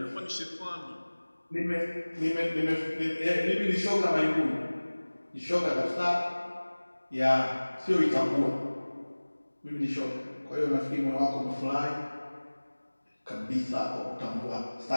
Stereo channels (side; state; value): both; inverted; correlation -1.00